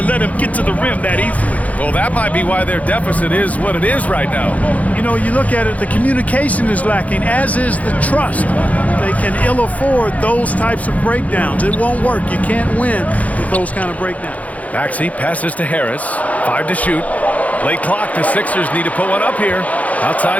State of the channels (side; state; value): right; late; 0.070 ms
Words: let him get to the rim that easily. Well, that might be why their deficit is what it is right now. You know, you look at it, the communication is lacking, as is the trust. They can ill afford those types of breakdowns. It won't work. You can't win with those kind of breakdowns. Maxey passes to Harris. 5 to shoot. Late clock. The Sixers need to put one up here. Outside